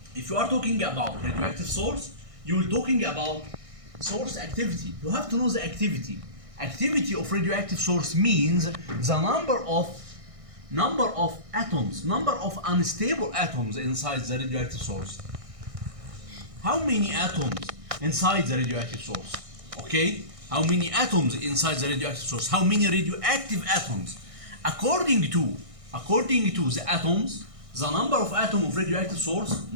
talking about radioactive source, you're talking about source activity. You have to know the activity. Activity of radioactive source means the number of atoms, number of unstable atoms inside the radioactive source. How many atoms inside the radioactive source? Okay? How many atoms inside the radioactive source? How many radioactive atoms? According to the atoms, the number of atoms of radioactive source,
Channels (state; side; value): late; left; 1.6 ms